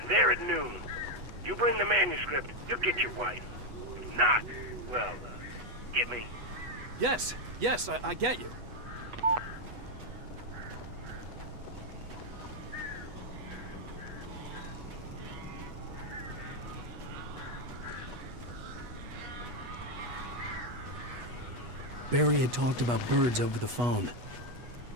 there at noon. You bring the manuscript, you'll get your wife. If not, well, get me? Yes, I get you. Barry had talked about birds over the phone.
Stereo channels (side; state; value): left; late; 8.2 ms